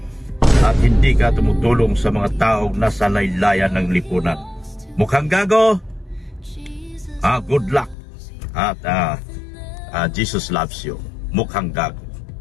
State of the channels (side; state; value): right; drops out; at 8.0 s